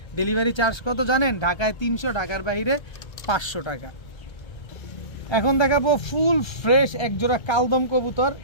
ডেলিভারি চার্জ কত জানেন? ঢাকায় 300, ঢাকার বাইরে 500 টাকা। এখন দেখাবো ফুল ফ্রেশ এক জোড়া কালদম কবুতর,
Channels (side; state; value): right; late; 1.3 ms